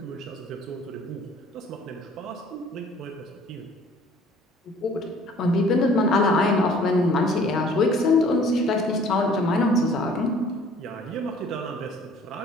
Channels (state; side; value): normal; both; correlation 0.53